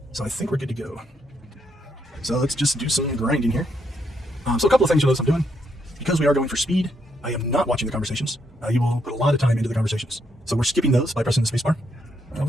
So I think we're good to go. So let's just do some grinding here. So a couple of things you'll notice I'm doing. Because we are going for speed, I am not watching the conversations. You will put a lot of time into the conversations. So we're skipping those by pressing the spacebar.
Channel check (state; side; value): normal; both; correlation 0.76